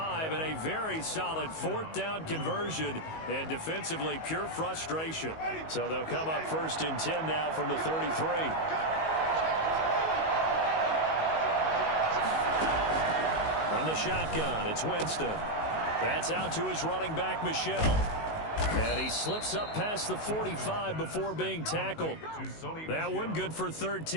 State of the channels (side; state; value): right; late; 19 ms